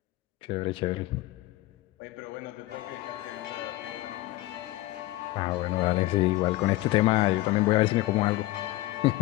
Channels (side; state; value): right; quieter; 17.9 dB